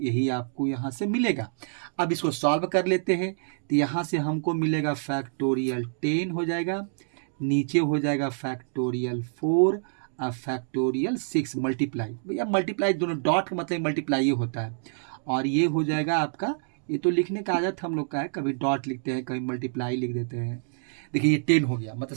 यही आपको यहाँ से मिलेगा। अब इसको सॉल्व कर लेते हैं, तो यहाँ से हमको मिलेगा फैक्टोरियल 10 हो जाएगा, नीचे हो जाएगा फैक्टोरियल 4 और फैक्टोरियल 6 मल्टीप्लाई, भैया मल्टीप्लाई दोनों डॉट का मतलब मल्टीप्लाई होता है, और ये हो जाएगा आपका, ये तो लिखने का आदत हम लोग का है, कभी डॉट लिखते हैं कभी मल्टीप्लाई लिख देते हैं। देखिए ये 10 हो गया, मतलब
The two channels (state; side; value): silent; left; digital silence